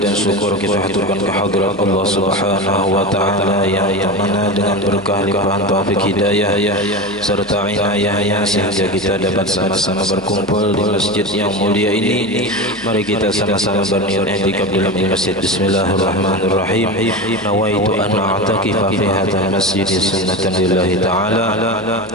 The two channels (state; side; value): normal; both; correlation 0.23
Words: syukur kita haturkan kehadirat Allah Subhanahu wa taala yang mana dengan berkah limpahan taufik hidayah serta inayahnya sehingga kita dapat sama-sama berkumpul di masjid yang mulia ini. Mari kita sama-sama berniat i'tikaf dalam masjid. Bismillahirrahmanirrahim. Nawaitu an a'takifa fi hadzal masjid sunnatan lillahi taala.